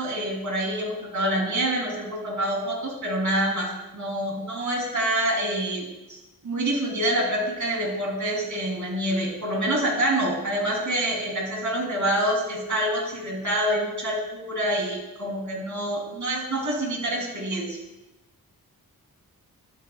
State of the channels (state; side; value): normal; both; correlation 0.15